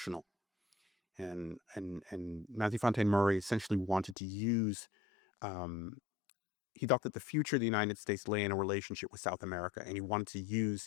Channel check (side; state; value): right; drops out; at 4.2 s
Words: And Matthew Fontaine Maury essentially wanted to use, he thought that the future of the United States lay in a relationship with South America, and he wanted to